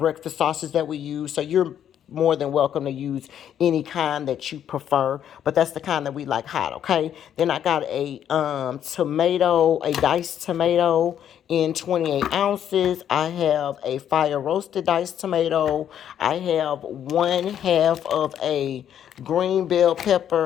sausage that we use, so you're more than welcome to use any kind that you prefer, but that's the kind that we like hot. Okay, then I got a a diced tomato in 28 ounces. I have a fire roasted diced tomato. I have 1/2 of a green bell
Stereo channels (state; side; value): quieter; right; 9.8 dB